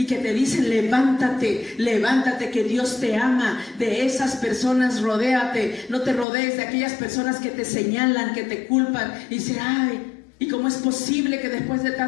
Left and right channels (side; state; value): right; drops out; at 6.2 s